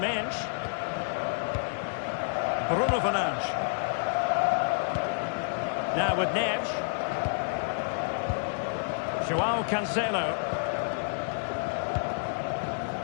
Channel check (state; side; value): silent; right; digital silence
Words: Bruno Fernandes. Now with Neves. João Cancelo.